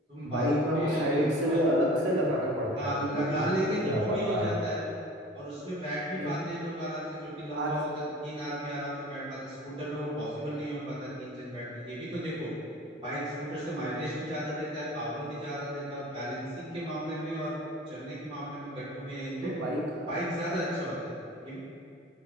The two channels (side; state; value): both; normal; correlation 0.42